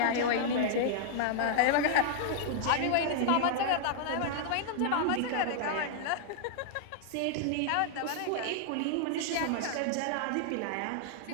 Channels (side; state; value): both; different; correlation -0.01